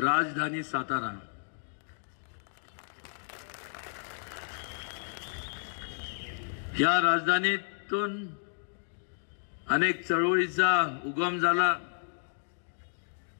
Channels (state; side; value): silent; right; digital silence